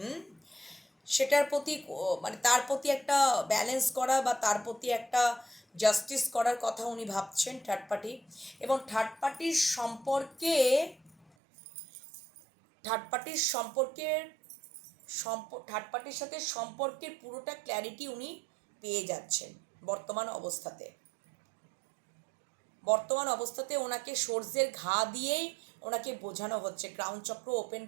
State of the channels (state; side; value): drops out; left; at 11.2 s